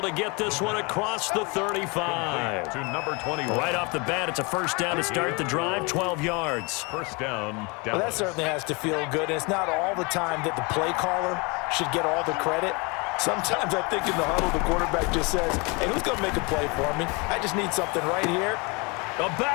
to get this one across the 35. To number 21. Right off the bat, it's a first down to start the drive, 12 yards. First down. Well, that certainly has to feel good. And it's not all the time that the play caller should get all the credit. Sometimes I think in the huddle, the quarterback just says, hey, who's going to make a play for me? I just need something right here. A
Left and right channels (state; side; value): quieter; right; 28.9 dB